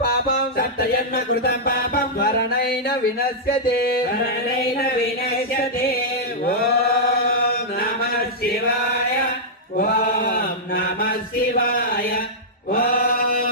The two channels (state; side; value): normal; both; correlation -0.09